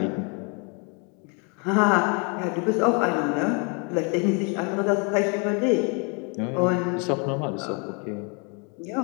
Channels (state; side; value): quieter; right; 35.4 dB